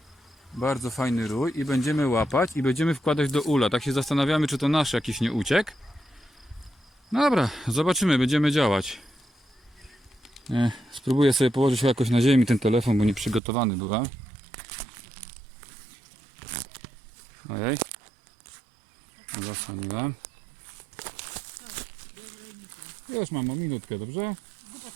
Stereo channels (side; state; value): left; drops out; at 13.4 s